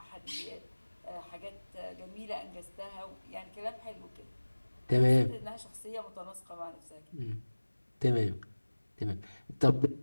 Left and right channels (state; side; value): inverted; both; correlation -1.00